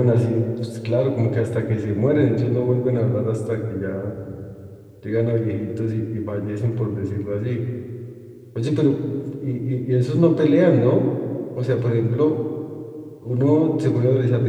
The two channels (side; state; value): both; identical; correlation 1.00